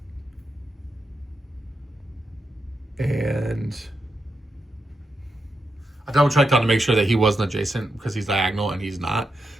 And I double checked on to make sure that he wasn't adjacent because he's diagonal and he's not.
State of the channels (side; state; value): both; normal; correlation 0.85